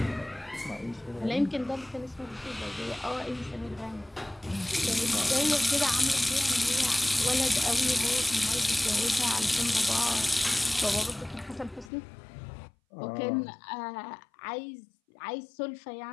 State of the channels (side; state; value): right; drops out; at 11.9 s